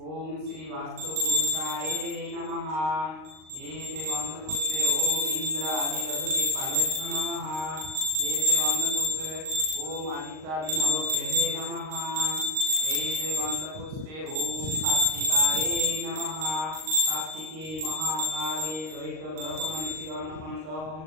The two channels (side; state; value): left; late; 38 ms